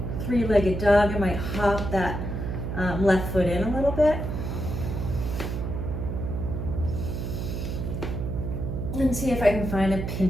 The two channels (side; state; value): right; noise; hum, 4 dB below the sound